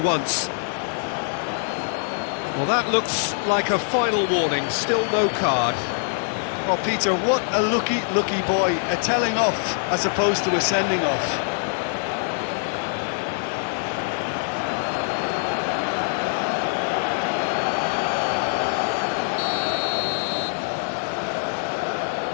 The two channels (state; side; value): silent; right; digital silence